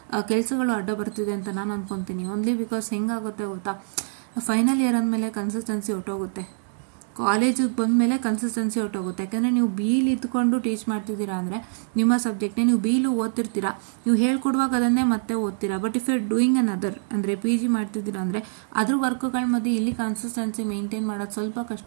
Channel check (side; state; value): left; silent; digital silence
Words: ಕೆಲಸಗಳು ಅಡ್ಡ ಬರ್ತಿದೆ ಅಂತ ನಾನು ಅನ್ಕೊತೀನಿ. ಓನ್ಲಿ ಬಿಕಾಸ್ ಹೆಂಗಾಗುತ್ತೆ ಗೊತ್ತಾ, ಫೈನಲ್ ಇಯರ್ ಅಂದಮೇಲೆ ಕನ್ಸಿಸ್ಟೆನ್ಸಿ ಹೊಟ್ಟೋಗುತ್ತೆ, ಕಾಲೇಜಿಗೆ ಬಂದಮೇಲೆ ಕನ್ಸಿಸ್ಟೆನ್ಸಿ ಹೊಟ್ಟೋಗುತ್ತೆ. ಯಾಕೆಂದರೆ ನೀವು ಬೀಲ್ ಇದ್ಕೊಂಡು ಟೀಚ್ ಮಾಡ್ತಿದ್ದೀರಾ ಅಂದರೆ ನಿಮ್ಮ ಸಬ್ಜೆಕ್ಟ್ನೇ ನೀವು ಬೀಲು ಓದ್ತಿರ್ತೀರಾ, ನೀವು ಹೇಳ್ಕೊಡುವಾಗ ಅದನ್ನೇ ಮತ್ತೆ ಓದ್ತೀರಾ. But if you doing an other ಅಂದರೆ PG ಮಾಡ್ತಿದ್ದೀರಾ ಅಂದರೆ ಅದ್ರ ವರ್ಕ್ಗಳ ಮಧ್ಯೆ ಇಲ್ಲಿ ಕನ್ಸಿಸ್ಟೆನ್ಸಿ ಮೇಂಟೈನ್ ಮಾಡೋದು ಸ್ವಲ್ಪ